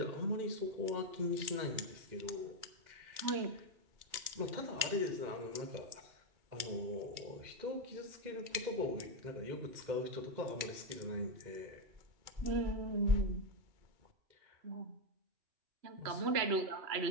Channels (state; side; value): late; left; 2.4 ms